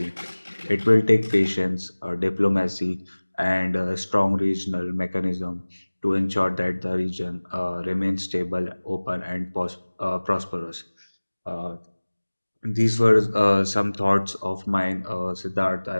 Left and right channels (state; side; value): inverted; both; correlation -1.00